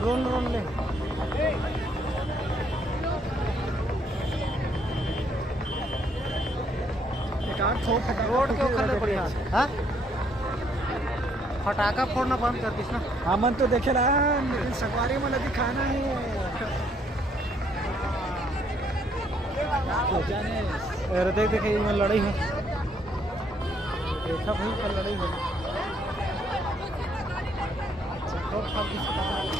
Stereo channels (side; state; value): both; normal; correlation 0.69